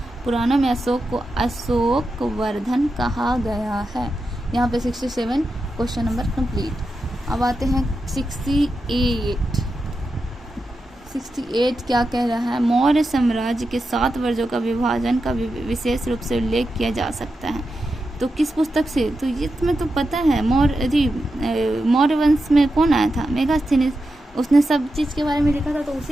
पुराणों में अशोक को अशोकवर्धन कहा गया है। यहाँ पे 67 क्वेश्चन नंबर कंप्लीट। अब आते हैं 68 क्या कह रहा है। मौर्य साम्राज्य के 7 वर्जों का विभाजन का विशेष रूप से उल्लेख किया जा सकता है। तो किस पुस्तक से, तो ये तुम्हें तो पता है, मौर्य वंश में कौन आया था, मेगास्थनीज, उसने सब चीज़ के बारे में लिखा था, तो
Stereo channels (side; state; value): both; normal; correlation 0.89